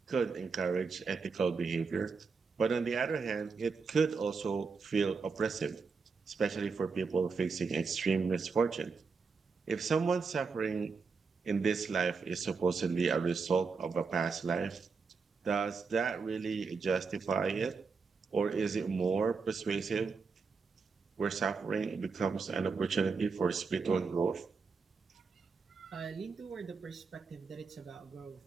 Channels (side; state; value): left; quieter; 5.0 dB